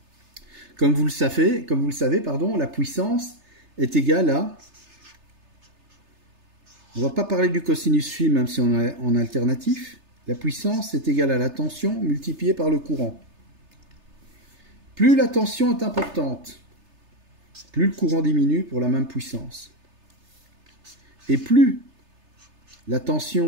Comme vous le savez, la puissance est égale à... On ne va pas parler du cosinus phi, même si on est en alternatif. La puissance est égale à la tension multipliée par le courant. Plus la tension est importante, plus le courant diminue pour la même puissance. Et plus la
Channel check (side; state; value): left; late; 3.3 ms